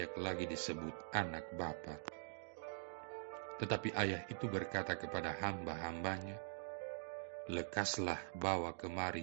lagi disebut anak Bapa." Tetapi ayah itu berkata kepada hamba-hambanya, "Lekaslah bawa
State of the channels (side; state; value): left; silent; digital silence